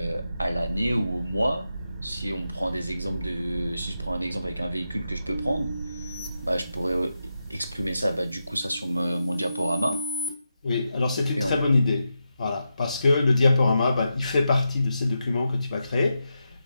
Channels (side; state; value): both; inverted; correlation -0.88